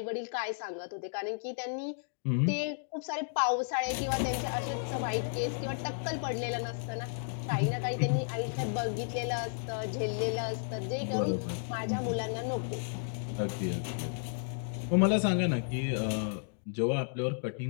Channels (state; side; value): silent; right; digital silence